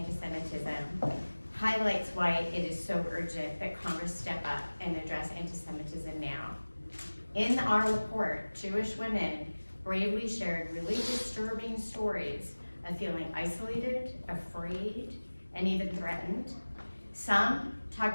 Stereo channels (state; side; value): inverted; both; correlation -1.00